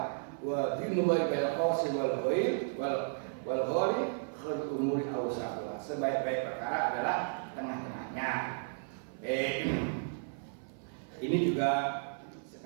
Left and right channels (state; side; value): silent; left; 55 dB below the other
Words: wa dinullahi bil qawsi wal ghaib wal ghali khul umuri awsatuha. Sebaik-baik perkara adalah tengah-tengahnya. Ini juga